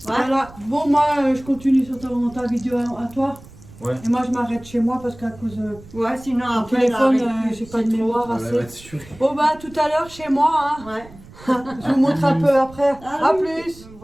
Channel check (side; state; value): right; noise; rumble, 20 dB below the sound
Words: Voilà. Bon, moi, je continue sur ta vidéo à toi. Ouais. Et moi, je m'arrête chez moi parce qu'à cause de Ouais, sinon mon après, téléphone, là, avec- j'ai pas de c'est trop. mémoire Voilà, elle va assez. être sûre. Bon, bah, tout à l'heure chez moi. Hein. Ouais. Je vous montre un peu après. Ah À oui. plus.